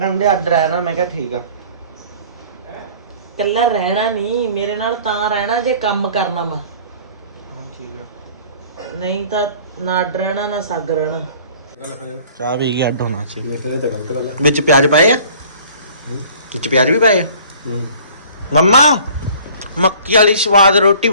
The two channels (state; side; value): inverted; both; correlation -0.50